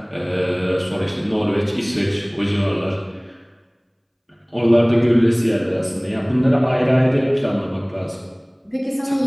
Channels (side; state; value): both; identical; correlation 1.00